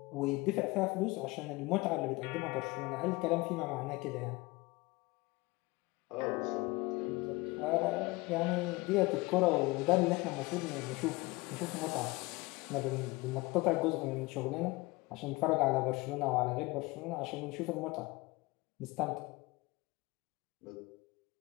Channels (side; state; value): right; quieter; 23.0 dB